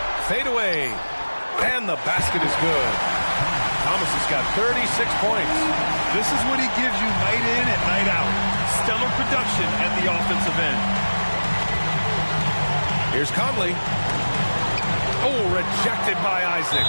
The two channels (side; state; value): both; inverted; correlation -1.00